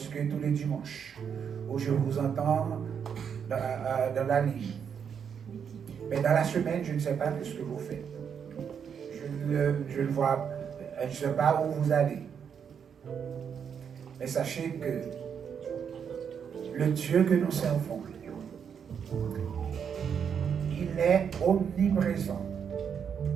tous les dimanches, où je vous entends dans la ligne. Mais dans la semaine, je ne sais pas ce que vous faites. Je ne vois, je ne sais pas où vous allez. Mais sachez que le Dieu que nous servons, il est omniprésent.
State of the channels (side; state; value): left; quieter; 7.4 dB